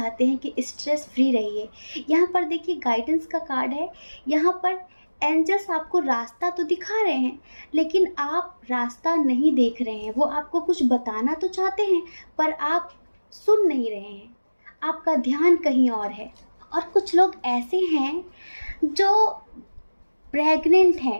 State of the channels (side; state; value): both; inverted; correlation -1.00